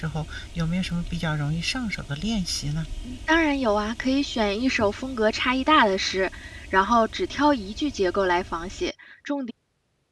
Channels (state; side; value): identical; both; correlation 1.00